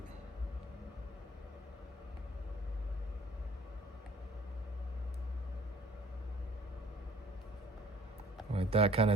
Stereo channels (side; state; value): both; normal; correlation 0.55